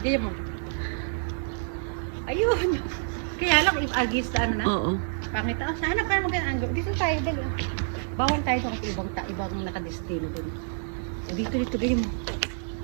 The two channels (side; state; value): left; silent; 60 dB below the other